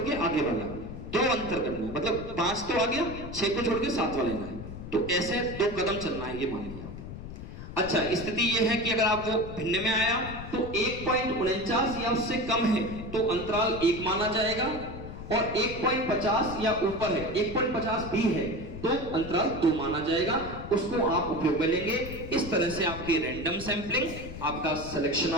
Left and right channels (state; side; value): noise; left; rumble, 11 dB below the sound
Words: आगे वाला, 2 अंतर करना है, मतलब 5 तो आ गया, 6 को छोड़ के 7 वाला लेना है। तो ऐसे 2 कदम चलना है, ये मान लिया। अच्छा, स्थिति ये है कि अगर आप वो भिन्न में आया तो 1.49 या उससे कम है तो अंतराल 1 माना जाएगा, और 1.50 या ऊपर है, 1.50 भी है तो अंतराल 2 माना जाएगा। उसको आप उपयोग में लेंगे। इस तरह से आपकी रैंडम सैंपलिंग, आपका सिलेक्शन